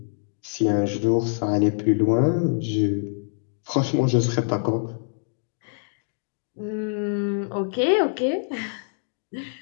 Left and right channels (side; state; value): right; silent; digital silence